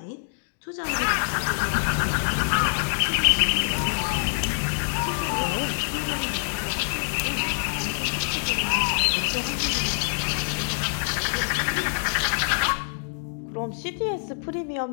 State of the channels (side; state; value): right; silent; digital silence